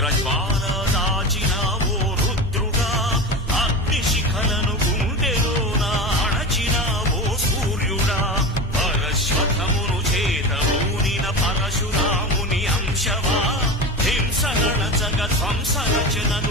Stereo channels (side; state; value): both; normal; correlation 0.27